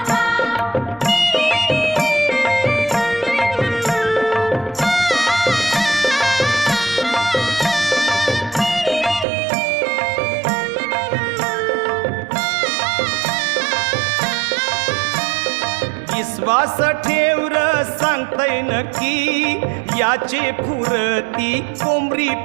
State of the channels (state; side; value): drops out; left; at 9.2 s